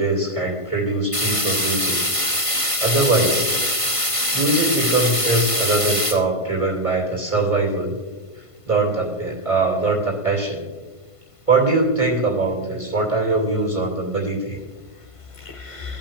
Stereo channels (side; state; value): right; late; 1.5 ms